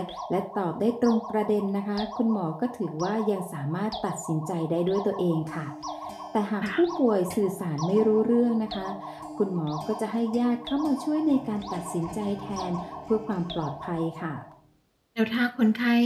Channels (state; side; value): identical; both; correlation 1.00